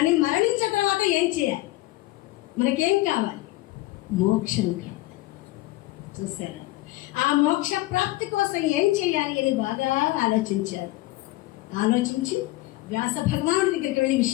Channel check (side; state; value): right; quieter; 18.6 dB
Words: మరణించిన తర్వాత ఏం చేయాలి, మనకేం కావాలి, మోక్షం కావాలి. చూసారా, ఆ మోక్ష ప్రాప్తి కోసం ఏం చేయాలి అని బాగా ఆలోచించారు. ఆలోచించి వ్యాస భగవానుడి దగ్గరికి వెళ్ళి